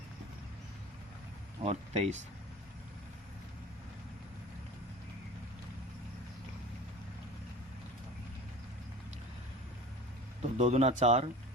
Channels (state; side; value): normal; both; correlation 0.37